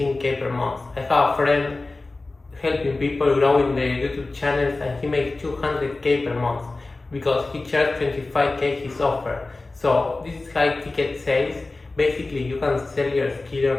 per month. I have a friend helping people growing their YouTube channels and he makes 200k per month because he charged 25k his offer. So this is high ticket sales. Basically, you can sell your skill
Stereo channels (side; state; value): right; quieter; 3.3 dB